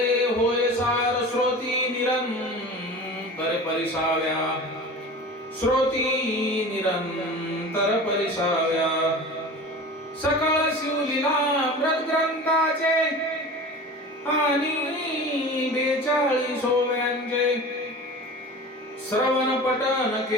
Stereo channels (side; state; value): both; normal; correlation 0.35